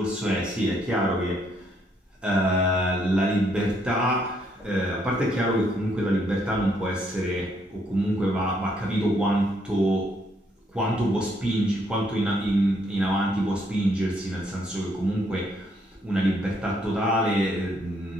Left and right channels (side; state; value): both; normal; correlation 0.71